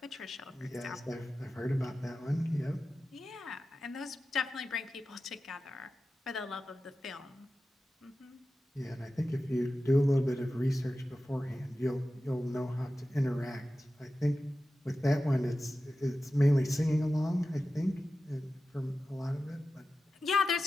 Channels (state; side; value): normal; both; correlation 0.93